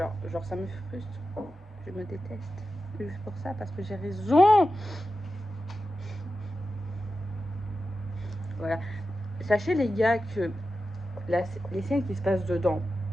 ça me frustre. Je me déteste. Juste pour ça, parce que j'ai raison. Voilà. Sachez, les gars, que les scènes qui se passent dedans,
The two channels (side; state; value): both; normal; correlation 0.92